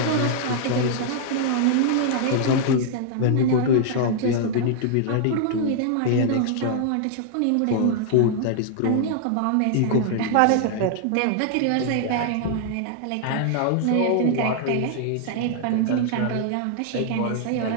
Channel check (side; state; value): both; different; correlation -0.01